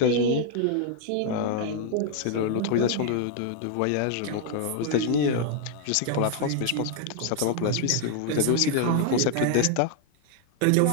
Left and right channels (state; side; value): different; both; correlation 0.00